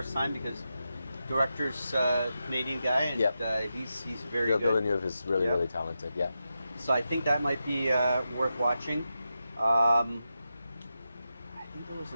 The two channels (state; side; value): inverted; both; correlation -0.89